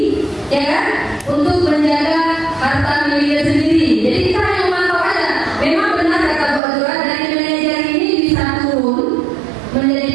ya kan, untuk menjaga harta miliknya sendiri. Jadi kita hanya memantau aja. Memang benar kata Bu Azura, dari manajer ini bisa turun menjadi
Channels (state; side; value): drops out; left; at 6.6 s